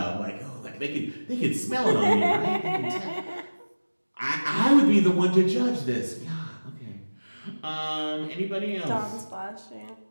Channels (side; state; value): both; inverted; correlation -1.00